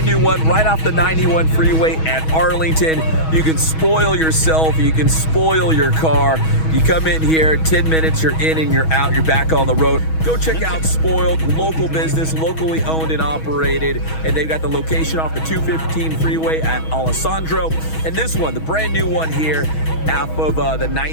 new one right off the 91 freeway at Arlington. You can spoil yourself. You can spoil your car. You come in here, 10 minutes, you're in and you're out. You're back on the road. Go check out Spoiled, local business, locally owned and operated. And they've got the location off the 215 freeway at Alessandro. And this one, the brand new one here, off of the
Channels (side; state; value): right; late; 6.3 ms